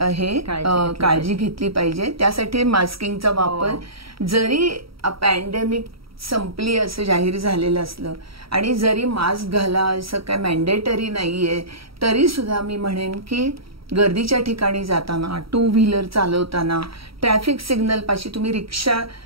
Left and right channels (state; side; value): late; left; 0.75 ms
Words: काळजी घेतली पाहिजे. त्यासाठी मास्किंगचा वापर, जरी पॅन्डेमिक संपली असं जाहीर झालेलं असलं आणि जरी मास्क घाला असं काय मॅन्डेटरी नाहीये, तरी सुद्धा मी म्हणेन की गर्दीच्या ठिकाणी जाताना, टू व्हीलर चालवताना, ट्रॅफिक सिग्नल पाशी, तुम्ही रिक्षा